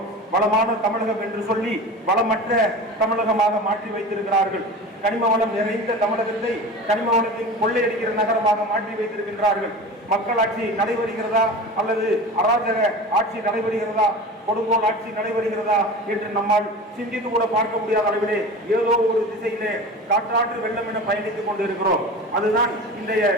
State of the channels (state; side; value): normal; both; correlation 0.33